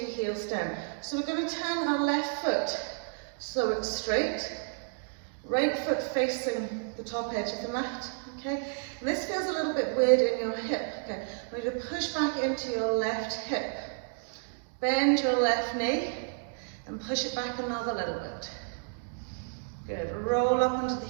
heels down. So we're going to turn our left foot so it's straight, right foot facing the top edge of the mat, okay? And this feels a little bit weird in your hip, okay? I want you to push back into your left hip, bend your left knee, and push it back another little bit. Good, roll up onto the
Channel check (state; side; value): silent; left; 57 dB below the other